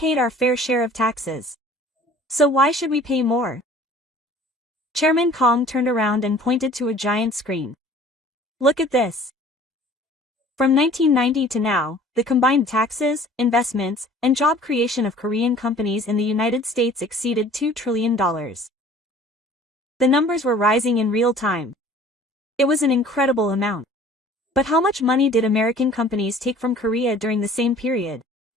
our fair share of taxes. So why should we pay more? Chairman Kong turned around and pointed to a giant screen. Look at this. From 1990 to now, the combined taxes, investments, and job creation of Korean companies in the United States exceeded $2 trillion. The numbers were rising in real time. It was an incredible amount. But how much money did American companies take from Korea during the same period?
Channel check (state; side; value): normal; both; correlation 0.49